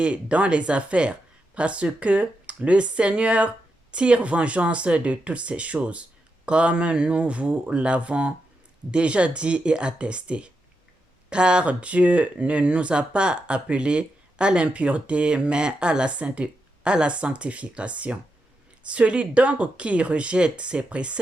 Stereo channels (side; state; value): both; normal; correlation 0.85